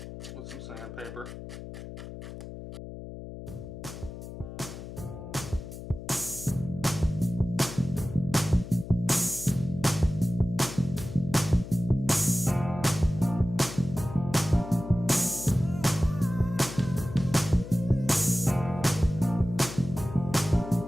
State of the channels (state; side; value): noise; left; hum, 11 dB below the sound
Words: with some sandpaper.